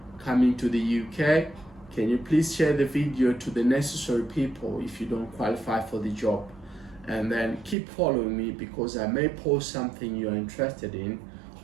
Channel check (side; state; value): left; drops out; at 7.8 s